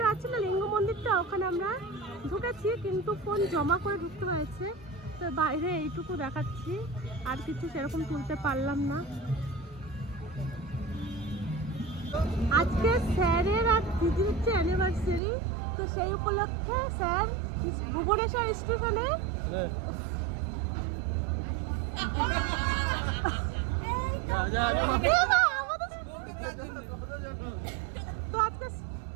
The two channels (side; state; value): left; drops out; at 15.2 s